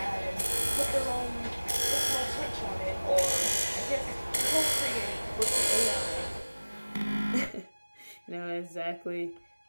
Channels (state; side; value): inverted; both; correlation -1.00